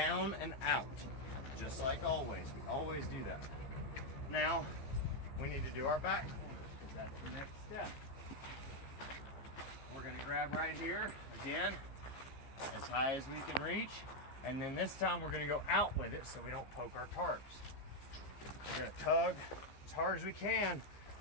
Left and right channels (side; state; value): right; late; 15 ms